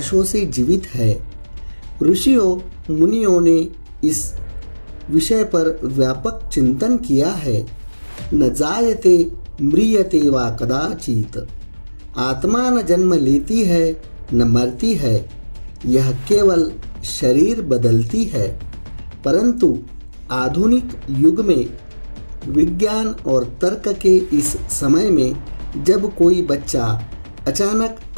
से जीवित है। ऋषियों मुनियों ने इस विषय पर व्यापक चिंतन किया है। न जायते म्रियते वा कदाचित, आत्मा न जन्म लेती है न मरती है, यह केवल शरीर बदलती है। परंतु आधुनिक युग में विज्ञान और तर्क के इस समय में जब कोई बच्चा अचानक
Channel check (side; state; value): both; inverted; correlation -1.00